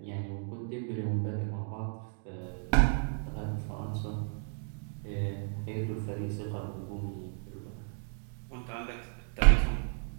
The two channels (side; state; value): left; silent; 56 dB below the other